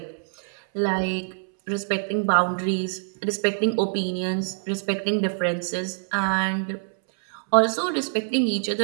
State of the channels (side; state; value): left; silent; 62 dB below the other